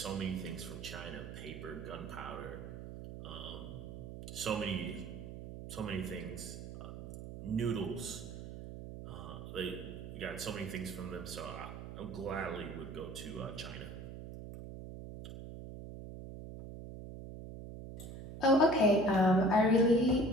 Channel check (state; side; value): noise; right; hum, 10 dB below the sound